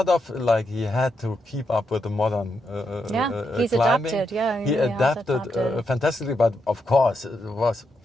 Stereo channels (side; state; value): both; normal; correlation 0.82